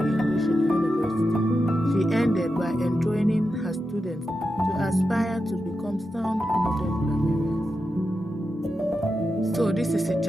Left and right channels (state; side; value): normal; both; correlation 0.89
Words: English in the university. She ended by enjoining her students to aspire to become sound modern grammarians. So this is a